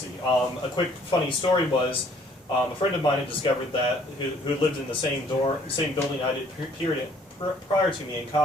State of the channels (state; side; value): normal; both; correlation 0.60